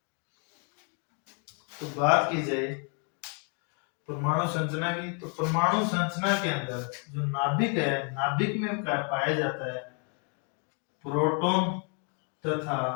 तो बात की जाए परमाणु संरचना की, तो परमाणु संरचना के अंदर जो नाभिक है, नाभिक में पाया जाता है प्रोटॉन तथा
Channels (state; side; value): quieter; right; 38.8 dB